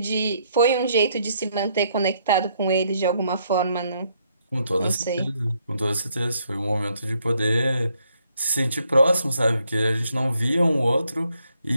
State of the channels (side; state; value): both; inverted; correlation -0.72